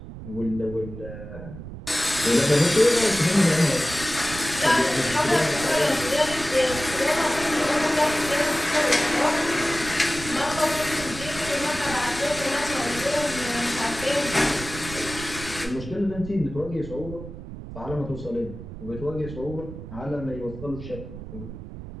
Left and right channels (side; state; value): right; noise; rumble, 12 dB below the sound